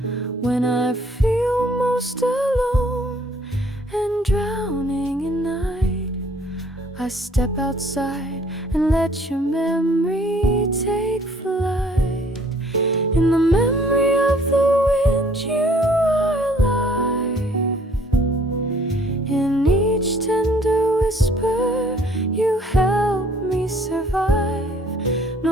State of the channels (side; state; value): both; normal; correlation 0.59